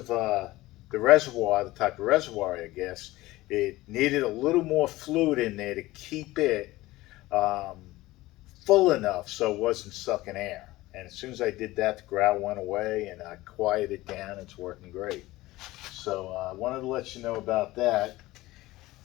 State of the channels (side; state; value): right; quieter; 18.4 dB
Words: the reservoir, the type of reservoir, I guess, it needed a little more fluid in there to keep it full enough so it wasn't sucking air. And as soon as I did that, the growl went away, and I quieted it down. It's working great. So I wanted to let you know about that.